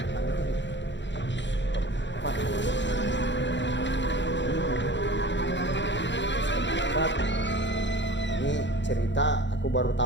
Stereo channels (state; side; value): late; right; 0.53 ms